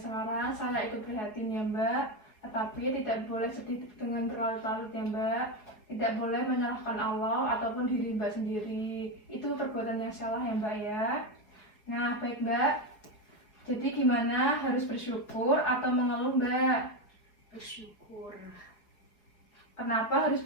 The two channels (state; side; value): late; right; 4.8 ms